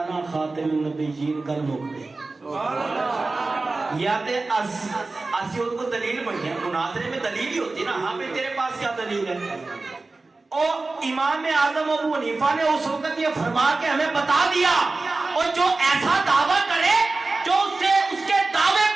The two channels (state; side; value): quieter; left; 3.5 dB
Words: خاتم النبیین، گل مک گئی۔ یا تے اسی ان کو دلیل بنیا، مناظرے میں دلیل ہی ہوتی نا، ہاں پہ تیرے پاس کیا دلیل ہے؟ اور امام اعظم ابو حنیفہ نے اس وقت یہ فرما کے ہمیں بتا دیا، اور جو ایسا دعویٰ کرے جو اس کے دعوے